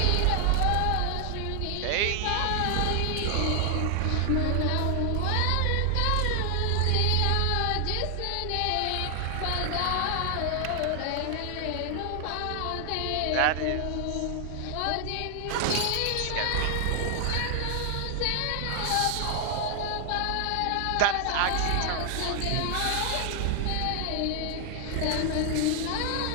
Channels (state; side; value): different; both; correlation 0.00